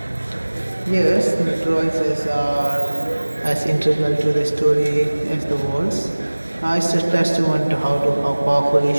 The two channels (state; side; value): inverted; both; correlation -1.00